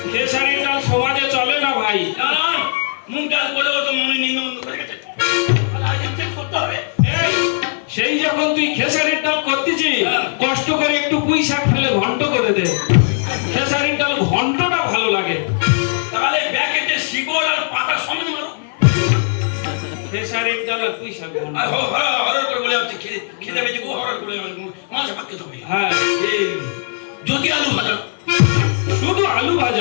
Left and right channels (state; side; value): silent; right; 56 dB below the other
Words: খেসারির ডাল সমাজে চলে না ভাই। কারণ মুখ ডাল করেও তো মনে নিমন্ত্রণ করে গেছে, চেক করতে হবে। সেই যখন তুই খেসারির ডাল করতেছিস, কষ্ট করে একটু পুঁই শাক ফেলে ঘন্ট করে দে। ডাল আর পুঁই শাক ঘন্ট। আর হরর করে বলে যাচ্ছে খেতে পেয়েছি ও হরর করে মাছ ভাত খেতে হবে। হ্যাঁ যদি আলু ভাজা, শুধু আলু